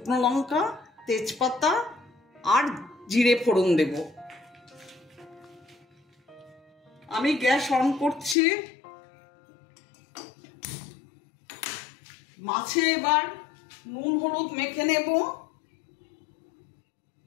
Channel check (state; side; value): drops out; right; at 8.3 s